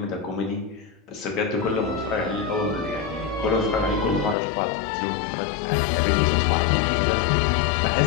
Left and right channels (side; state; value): right; drops out; at 4.4 s